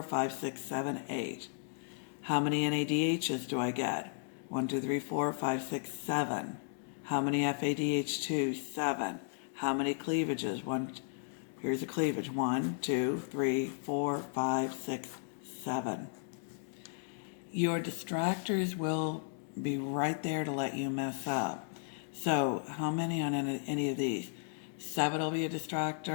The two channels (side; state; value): right; silent; digital silence